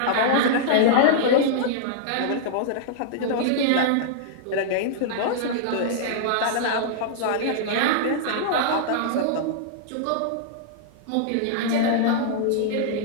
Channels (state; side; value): different; both; correlation -0.01